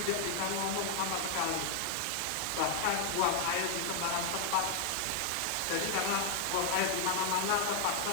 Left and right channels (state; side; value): different; both; correlation 0.00